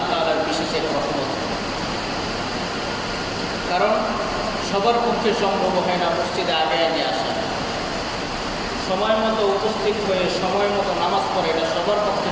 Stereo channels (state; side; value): identical; both; correlation 1.00